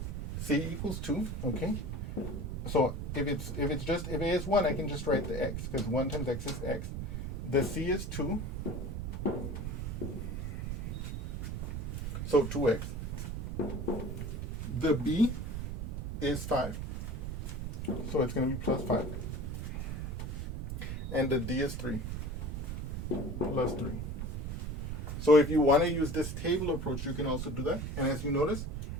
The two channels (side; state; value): right; noise; rumble, 4 dB below the sound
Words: C equals 2, okay? So if A is 1, I can just write the x, because 1 times x is x. The C is 2. So 2x. The B is 5. So it's going to be plus 5. And the D is 3. Plus 3. So if you want to use this table approach, you can also do that. And as you notice,